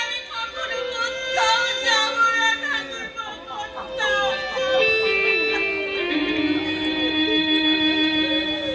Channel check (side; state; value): both; identical; correlation 1.00